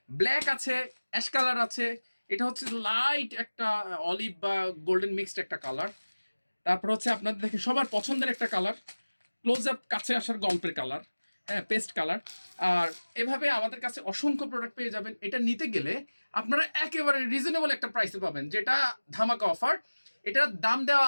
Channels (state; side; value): inverted; both; correlation -1.00